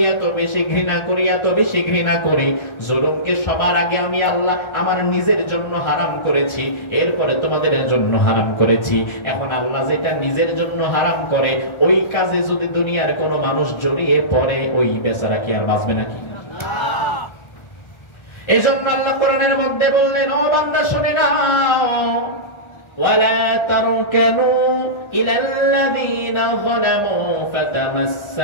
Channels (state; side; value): late; right; 1.4 ms